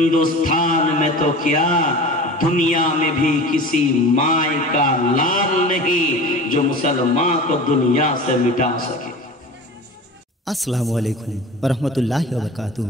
में तो क्या दुनिया में भी किसी माय का लाल नहीं जो मुसलमान को दुनिया से मिटा सके। আসসালামু আলাইকুম ওয়া রাহমাতুল্লাহি ওয়া বারাকাতুহু।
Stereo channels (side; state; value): both; normal; correlation 0.35